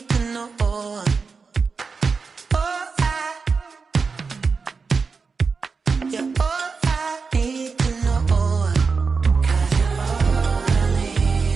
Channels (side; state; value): left; quieter; 4.9 dB